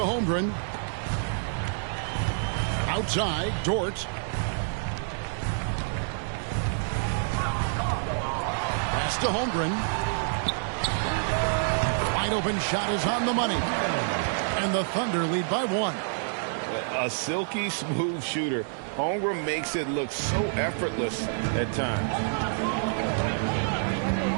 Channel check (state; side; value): silent; left; digital silence